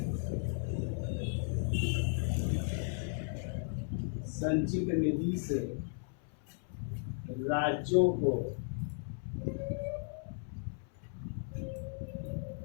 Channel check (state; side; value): silent; right; 54 dB below the other